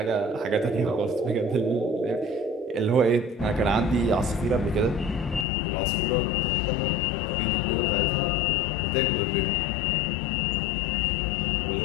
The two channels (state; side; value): drops out; right; at 5.5 s